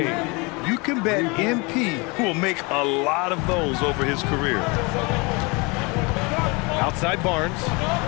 You can bet MP will make a lot of those over his career. Outside Barnes.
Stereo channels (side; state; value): right; quieter; 28.0 dB